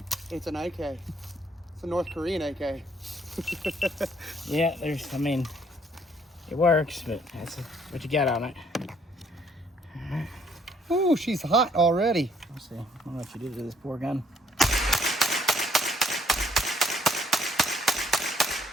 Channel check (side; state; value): both; normal; correlation 0.65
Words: It's an AK. It's a North Korean AK. Yeah, I mean, it works, but that's what you got on it. Ooh, she's hot already. Let's see. I don't know what you did to this poor gun.